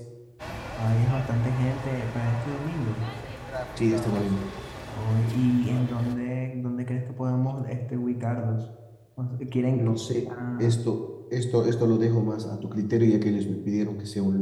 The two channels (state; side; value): identical; both; correlation 1.00